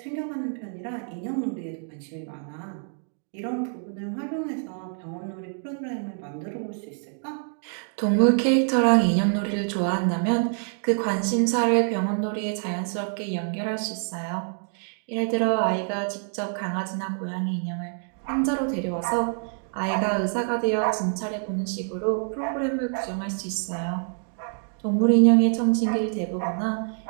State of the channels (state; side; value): silent; left; 59 dB below the other